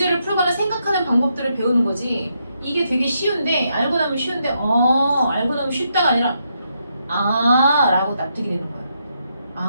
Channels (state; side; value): inverted; both; correlation -0.79